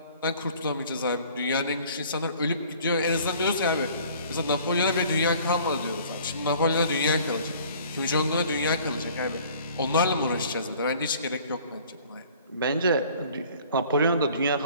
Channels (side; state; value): both; inverted; correlation -0.52